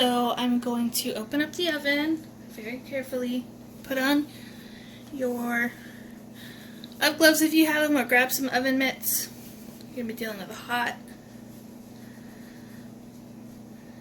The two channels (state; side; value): identical; both; correlation 1.00